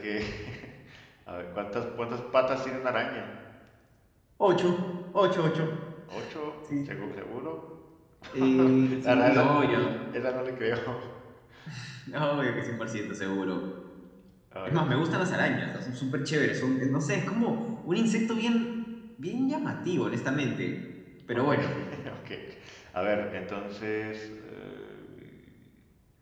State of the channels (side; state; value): both; identical; correlation 1.00